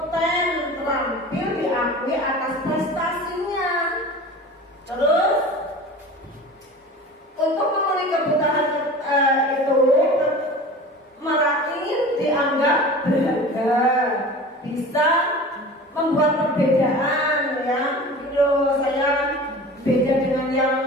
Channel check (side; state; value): both; normal; correlation 0.37